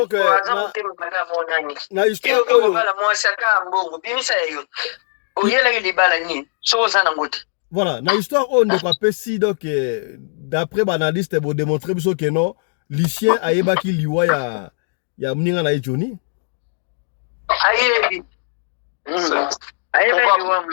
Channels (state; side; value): silent; right; digital silence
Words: na histoire oyo voilà na histoire oyo ndeko apesi donc d'après banaliste bo démontrer biso que non Lucien ayebaki liwa ya mninga na ye Johnny